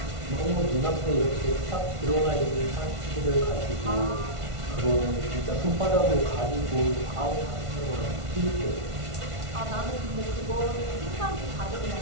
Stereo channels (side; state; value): left; late; 1.5 ms